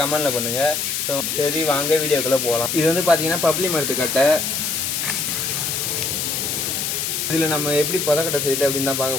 கமெண்ட்டில் பண்ணுங்கள். ஸோ சரி, வாங்க வீடியோக்குள்ளே போகலாம். இது வந்து பார்த்தீங்கன்னா பப்ளி மரத்து கட்டை. இதில் நம்ம எப்படி புதக்கட்டை செய்யுது அப்படின்னு தான்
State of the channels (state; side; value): noise; left; hiss, 1 dB below the sound